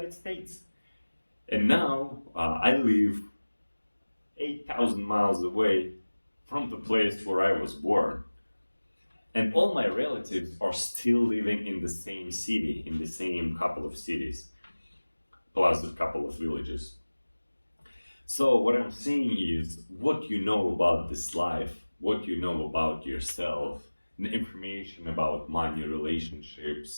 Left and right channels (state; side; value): inverted; both; correlation -1.00